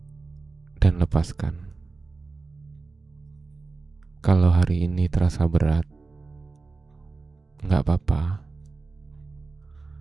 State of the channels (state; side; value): quieter; left; 3.9 dB